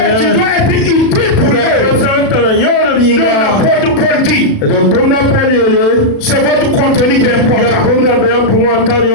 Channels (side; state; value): right; late; 37 ms